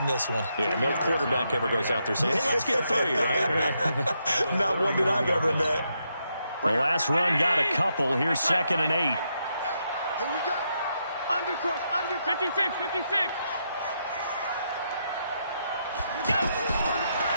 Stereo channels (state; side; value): inverted; both; correlation -0.80